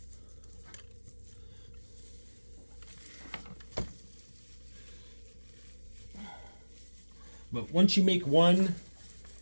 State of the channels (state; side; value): inverted; both; correlation -1.00